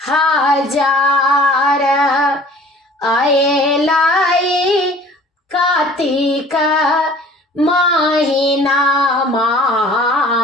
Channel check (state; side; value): normal; both; correlation 0.48